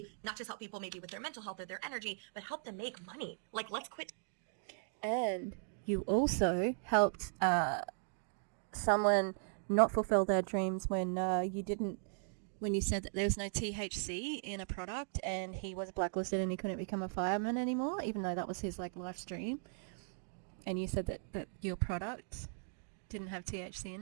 not just help people maybe with their mental health or their energy, but help them make money. Like, let's quit. And you also helped someone not fulfill their dreams when you said that there was no THC in a product, and he was blacklisted and he couldn't become a fireman anymore, even though that was his life's dream. And you said that your product didn't have THC in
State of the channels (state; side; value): silent; left; digital silence